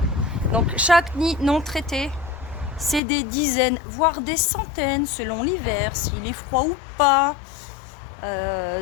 Donc chaque nid non traité, c'est des dizaines, voire des centaines, selon l'hiver, s'il est froid ou pas.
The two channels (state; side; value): drops out; right; at 3.0 s